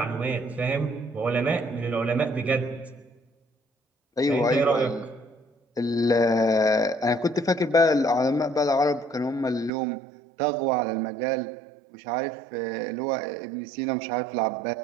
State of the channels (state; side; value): drops out; left; at 9.7 s